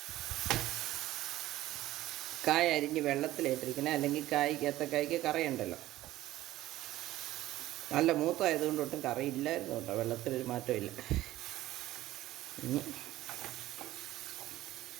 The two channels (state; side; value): quieter; left; 15.5 dB